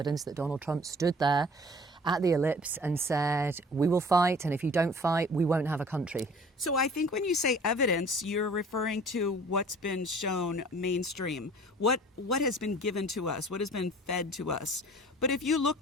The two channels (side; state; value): both; normal; correlation 0.49